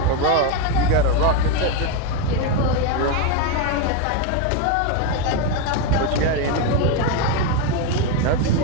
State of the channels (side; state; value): both; different; correlation 0.03